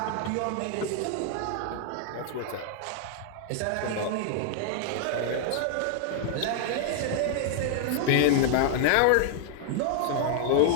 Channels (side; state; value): both; different; correlation 0.00